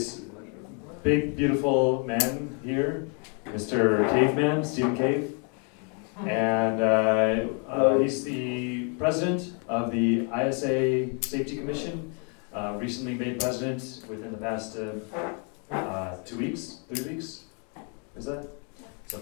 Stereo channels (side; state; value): right; quieter; 37.9 dB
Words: big, beautiful man here, Mr. Caveman, Stephen Cave, and he's the president of the ISA Safety Commission, recently made president within the past 2 weeks, 3 weeks, is that?